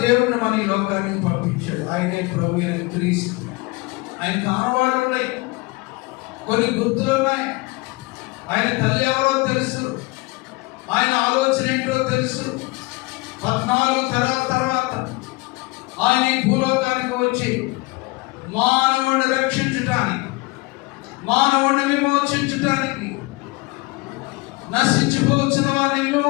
దేవుడిని మన ఈ లోకానికి పంపించాడు. ఆయనే ప్రభు అయిన క్రీస్తు. ఆయన ఆనవాళ్ళు ఉన్నాయి. కొన్ని గుర్తులు ఉన్నాయి. ఆయన తల్లి ఎవరో తెలుసు, ఆయన ఆలోచన ఏంటో తెలుసు. 14 తరాల తర్వాత ఆయన ఈ భూలోకానికి వచ్చి మానవుడిని రక్షించటానికి, మానవుడిని విమోచించటానికి, నశించిపోవచ్చిన వారిని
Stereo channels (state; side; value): quieter; right; 24.6 dB